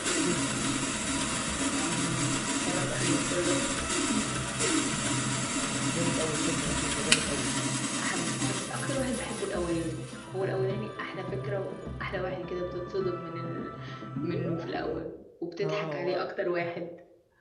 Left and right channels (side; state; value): both; identical; correlation 1.00